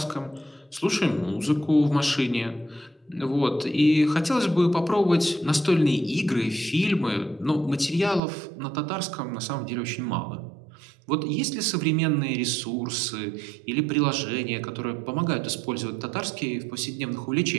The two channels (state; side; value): drops out; left; at 8.2 s